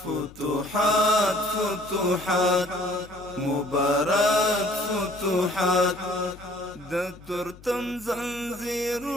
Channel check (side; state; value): left; noise; hum, 21 dB below the sound